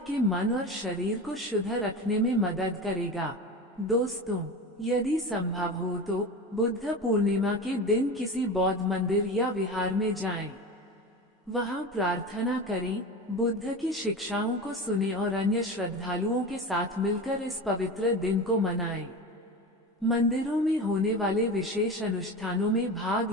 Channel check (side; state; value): both; normal; correlation 0.27